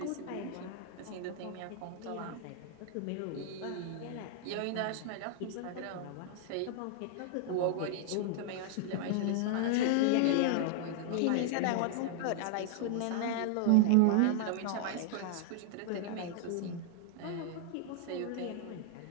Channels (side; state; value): both; different; correlation -0.01